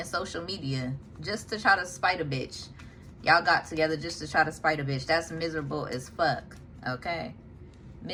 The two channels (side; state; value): both; identical; correlation 1.00